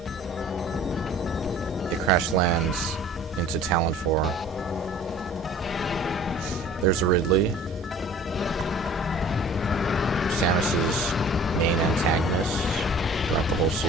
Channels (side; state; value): both; normal; correlation 0.47